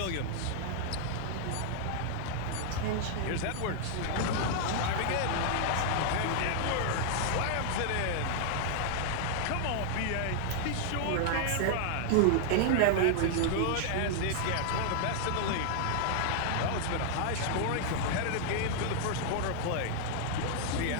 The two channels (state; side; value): different; both; correlation -0.01